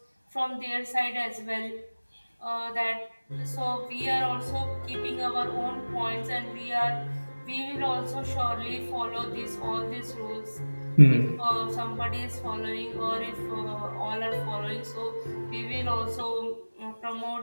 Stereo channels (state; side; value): inverted; both; correlation -1.00